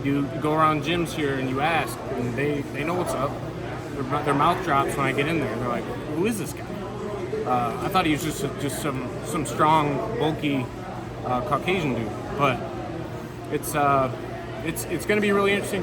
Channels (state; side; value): identical; both; correlation 1.00